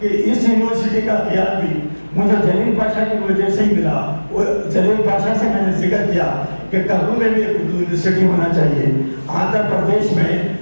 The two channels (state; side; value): inverted; both; correlation -1.00